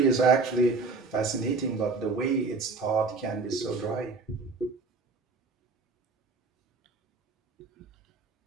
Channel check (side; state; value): left; quieter; 4.0 dB